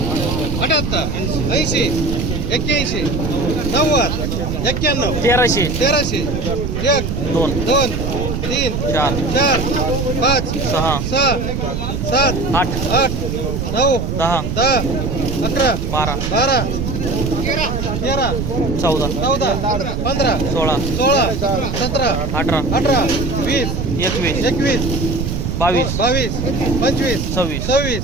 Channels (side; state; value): right; noise; rumble, 2 dB below the sound